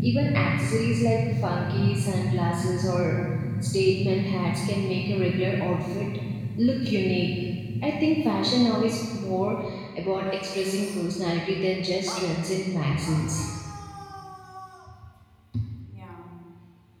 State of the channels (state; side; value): identical; both; correlation 1.00